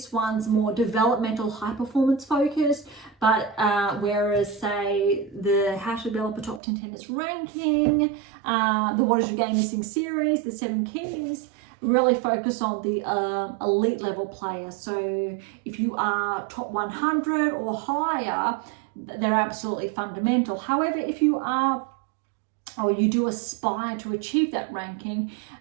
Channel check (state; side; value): drops out; left; at 6.6 s